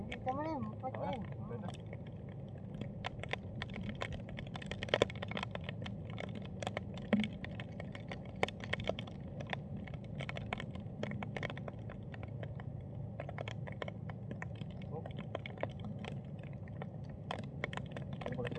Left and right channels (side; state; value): both; identical; correlation 1.00